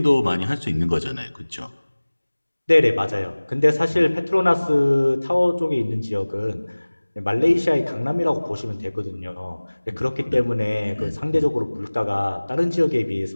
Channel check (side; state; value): both; inverted; correlation -1.00